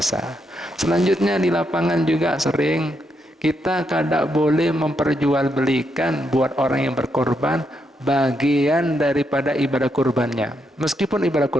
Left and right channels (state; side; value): normal; both; correlation 0.80